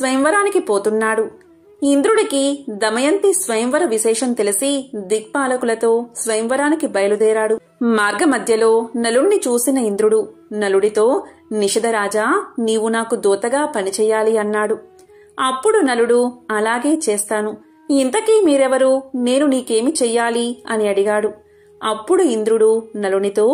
పోతున్నాడు. ఇంద్రుడికి దమయంతి స్వయంవర విశేషం తెలిసి దిక్పాలకులతో స్వయంవరానికి బయలుదేరాడు. మార్గమధ్యలో నలుణ్ణి చూసిన ఇంద్రుడు నలుడితో, నిషధరాజా, నీవు నాకు దూతగా పనిచేయాలి అన్నాడు. అప్పుడు నలుడు, అలాగే చేస్తాను. ఇంతకీ మీరెవరు? నేను నీకేమి చెయ్యాలి అని అడిగాడు. అప్పుడు ఇంద్రుడు నలునితో,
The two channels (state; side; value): identical; both; correlation 1.00